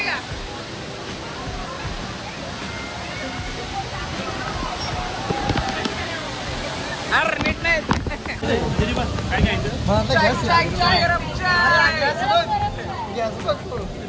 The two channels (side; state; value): both; identical; correlation 1.00